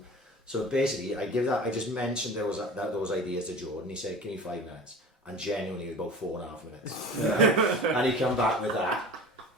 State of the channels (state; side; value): normal; both; correlation 0.37